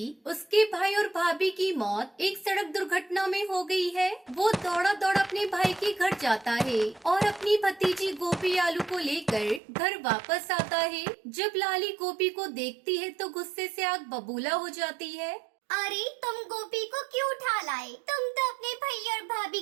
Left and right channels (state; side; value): drops out; left; at 9.6 s